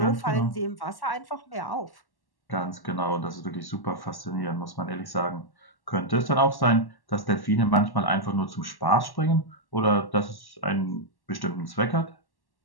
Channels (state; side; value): late; right; 1.1 ms